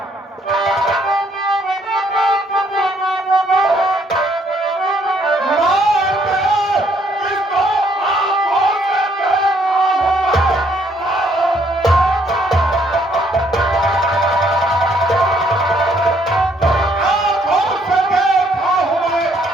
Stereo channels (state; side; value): normal; both; correlation 0.67